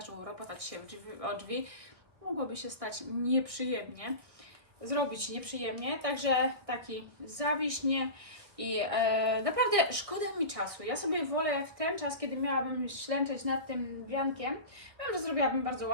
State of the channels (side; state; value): left; late; 1.4 ms